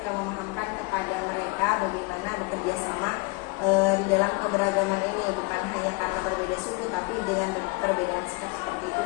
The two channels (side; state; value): right; quieter; 26.9 dB